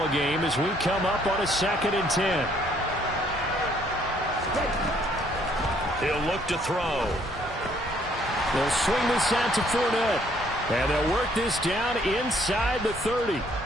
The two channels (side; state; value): both; normal; correlation 0.65